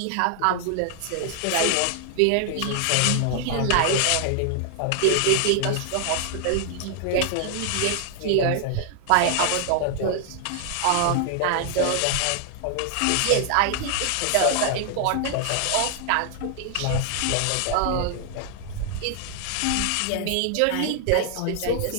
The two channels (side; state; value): both; different; correlation 0.00